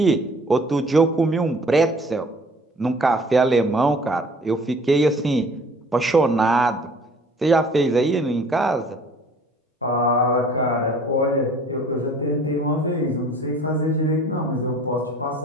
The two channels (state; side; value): normal; both; correlation 0.51